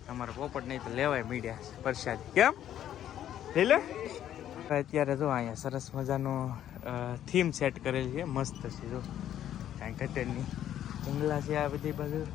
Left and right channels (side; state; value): right; quieter; 11.1 dB